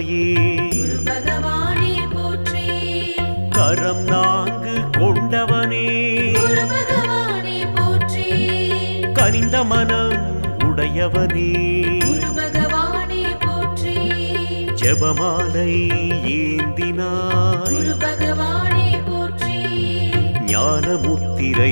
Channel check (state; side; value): inverted; both; correlation -1.00